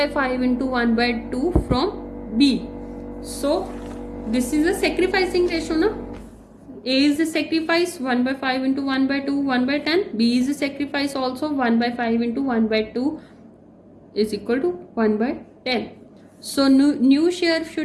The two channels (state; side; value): identical; both; correlation 1.00